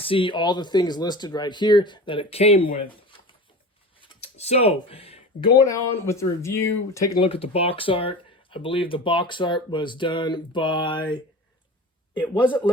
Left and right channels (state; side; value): normal; both; correlation 0.34